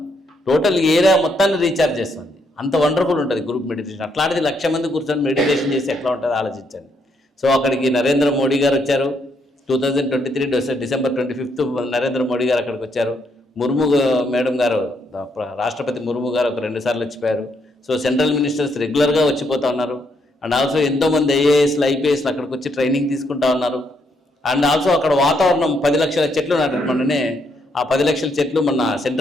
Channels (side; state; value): both; normal; correlation 0.75